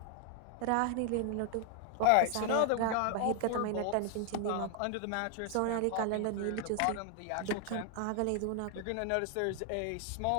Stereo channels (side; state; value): both; different; correlation 0.00